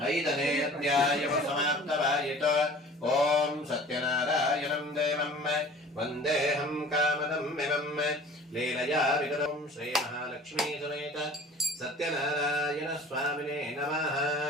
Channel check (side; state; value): both; normal; correlation 0.45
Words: 5ನೇ ಅಧ್ಯಾಯವು ಸಮಾಪ್ತವಾಯಿತು. ಓಂ ಸತ್ಯನಾರಾಯಣಂ ದೇವಂ ವಂದೇಹಂ ಕಾಮದಂ ಮಿಮಂ ಲೀಲಯಾ ವಿಗತಂ ಶ್ರೀ ಮಹಾಲಕ್ಷ್ಮೀ ಸಮೇತ ಸತ್ಯನಾರಾಯಣ ಸ್ವಾಮಿನೇ ನಮಃ.